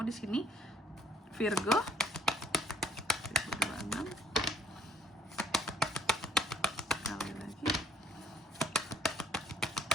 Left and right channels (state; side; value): normal; both; correlation 0.61